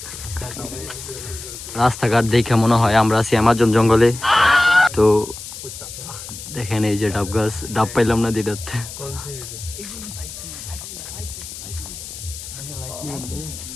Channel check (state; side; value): noise; left; hiss, 11 dB below the sound